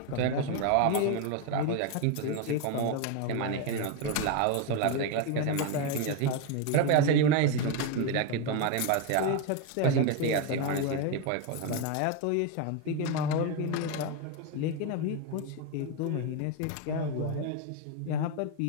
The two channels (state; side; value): different; both; correlation 0.02